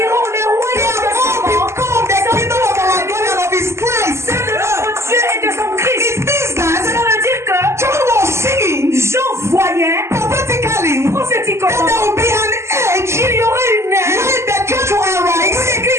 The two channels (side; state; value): left; late; 0.13 ms